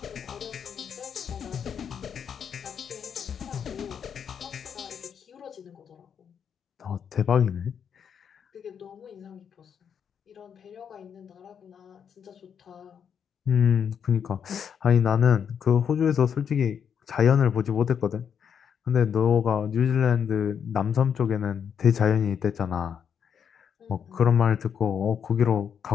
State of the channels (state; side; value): quieter; right; 7.6 dB